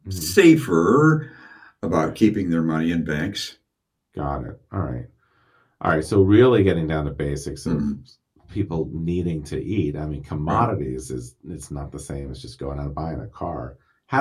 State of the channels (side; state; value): both; identical; correlation 1.00